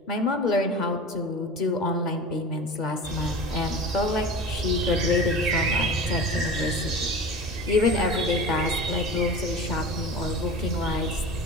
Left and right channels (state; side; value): normal; both; correlation 0.34